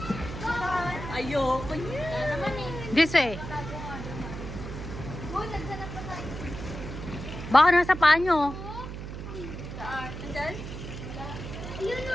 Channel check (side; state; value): right; noise; hum, 8 dB below the sound